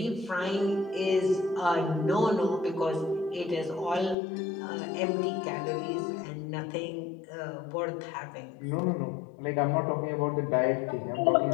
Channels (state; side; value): drops out; right; at 4.2 s